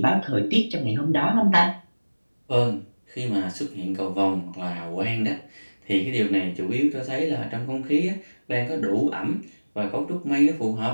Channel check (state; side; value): inverted; both; correlation -1.00